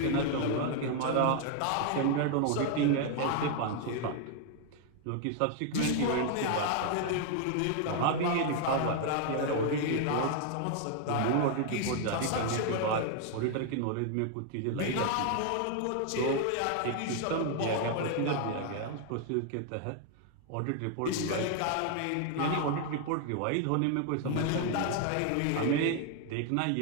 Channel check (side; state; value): both; different; correlation 0.00